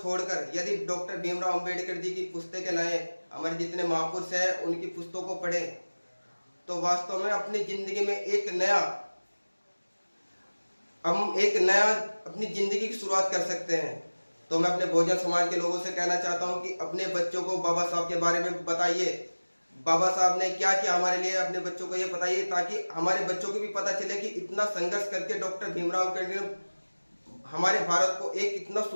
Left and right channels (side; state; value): both; inverted; correlation -1.00